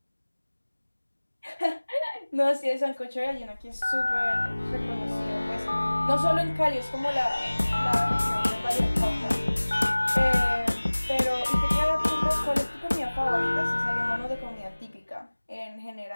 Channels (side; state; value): both; inverted; correlation -1.00